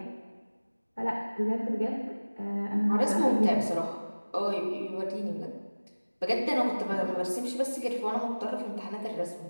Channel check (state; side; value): inverted; both; correlation -1.00